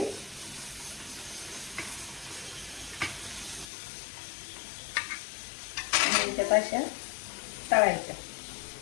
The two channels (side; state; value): right; drops out; at 3.7 s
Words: आणि त्यात अशा तळायच्या।